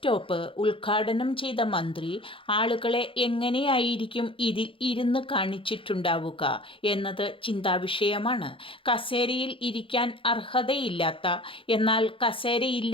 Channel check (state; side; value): late; right; 0.25 ms